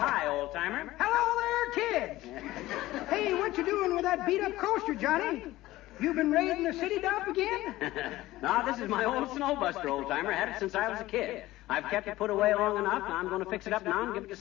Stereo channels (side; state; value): right; quieter; 16.9 dB